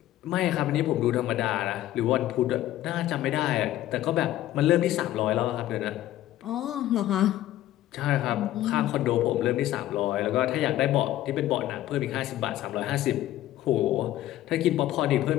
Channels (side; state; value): right; quieter; 14.0 dB